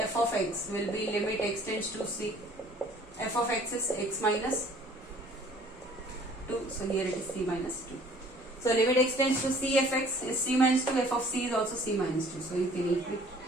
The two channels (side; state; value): both; normal; correlation 0.54